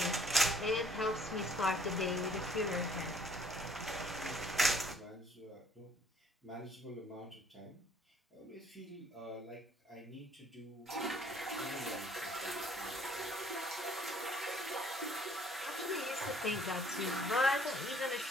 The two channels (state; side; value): normal; both; correlation 0.61